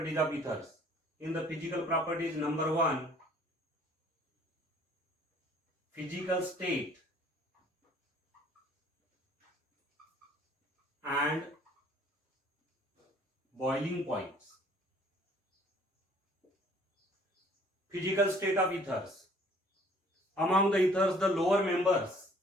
of ethers. In the physical properties, number one, physical state and boiling points. Physical state of ethers. Among the ethers, the lower members,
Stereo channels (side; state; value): both; normal; correlation 0.56